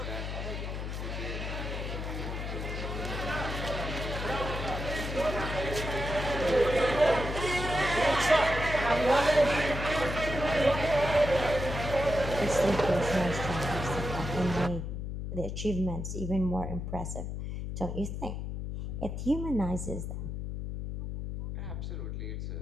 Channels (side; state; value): left; noise; hum, 5 dB below the sound